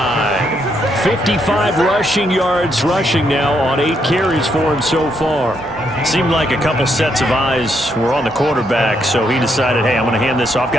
55 rushing yards rushing now on 8 carries for him so far. Seemed like a couple sets of eyes were on the quarterback, so he decided, hey, I'm going to hand this off.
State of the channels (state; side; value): normal; both; correlation 0.76